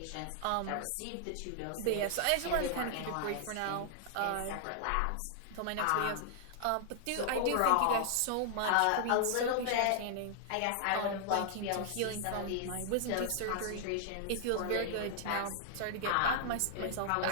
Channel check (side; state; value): both; different; correlation 0.00